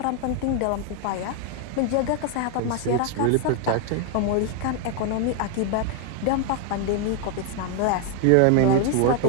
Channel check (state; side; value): different; both; correlation 0.00